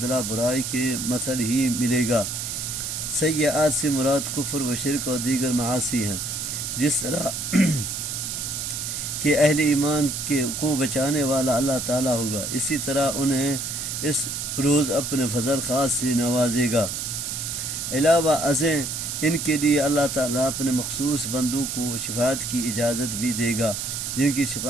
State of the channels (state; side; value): noise; right; hiss, 4 dB below the sound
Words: برائی کے مثل ہی ملے گا۔ سیئات سے مراد کفر و شرک اور دیگر معاصی ہیں، جس طرح کہ اہل ایمان کو بچانے والا اللہ تعالیٰ ہوگا، اسی طرح انہیں اس روز اپنے فضل خاص سے نوازے گا۔ علاوہ ازیں ان کے لیے اللہ تعالیٰ اپنے مخصوص بندوں کو شفاعت کی اجازت بھی دے گا، جن کی